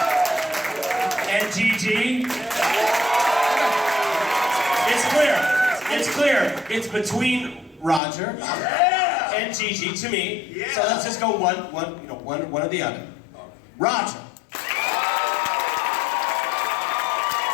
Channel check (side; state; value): right; drops out; at 8.0 s